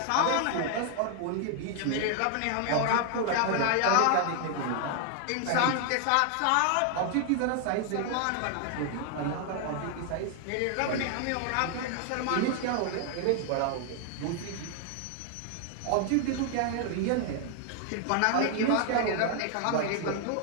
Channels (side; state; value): both; different; correlation 0.00